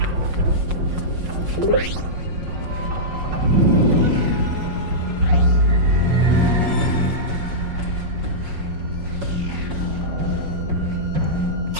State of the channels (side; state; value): left; late; 5.5 ms